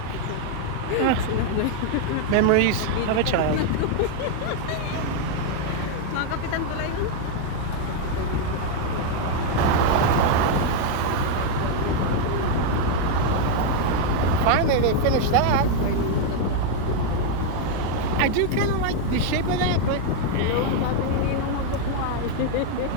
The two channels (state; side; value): different; both; correlation 0.00